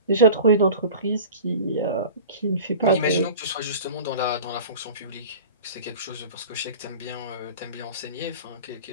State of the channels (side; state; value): both; inverted; correlation -0.36